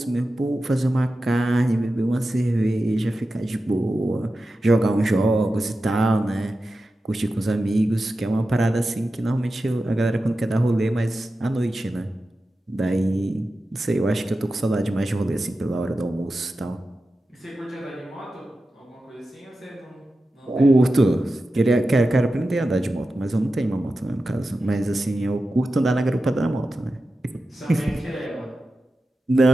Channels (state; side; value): normal; both; correlation 0.92